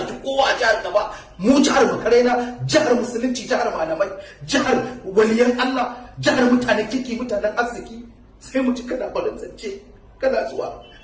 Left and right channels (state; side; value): identical; both; correlation 1.00